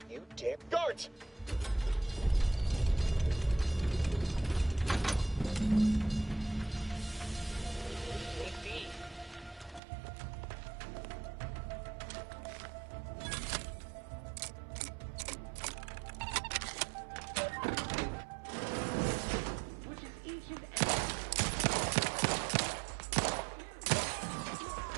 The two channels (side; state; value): left; drops out; at 9.8 s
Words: You dare... Guards!